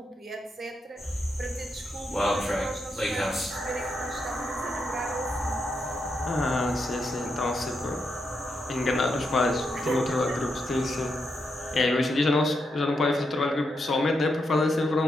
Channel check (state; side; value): normal; both; correlation 0.82